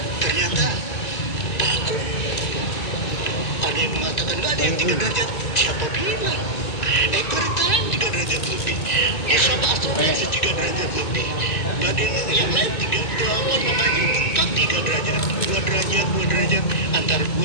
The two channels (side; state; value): right; late; 2.2 ms